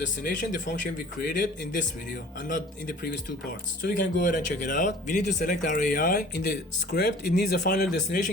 the function we created in this video and not in the previous two parts. So we can go ahead and check it out. We need to select our AI. In the script, it needs a final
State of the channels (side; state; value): both; normal; correlation 0.47